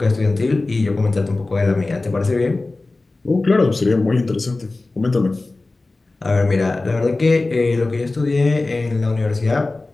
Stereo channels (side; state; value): right; quieter; 3.2 dB